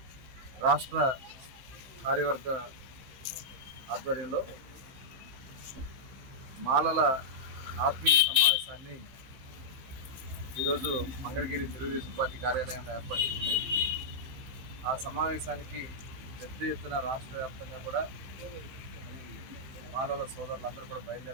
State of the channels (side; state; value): left; late; 15 ms